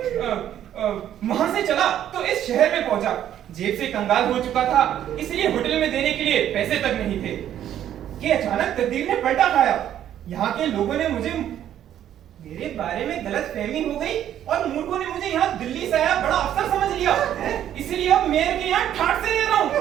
वहां से चला तो इस शहर में पहुंचा। जेब से कंगाल हो चुका था, इसलिए होटल में देने के लिए पैसे तक नहीं थे कि अचानक तकदीर ने पलटा खाया। यहाँ के लोगों ने मुझे, मेरे बारे में गलत फहमी हो गई और मूर्खों ने मुझे यहाँ दिल्ली से आया बड़ा अफसर समझ लिया। इसलिए अब मेयर के यहाँ ठाट से रह रहा हूँ।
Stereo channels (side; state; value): left; quieter; 10.9 dB